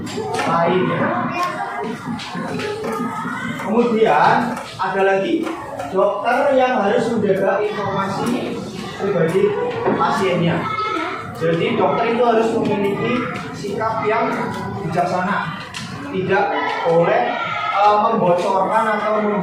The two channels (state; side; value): identical; both; correlation 1.00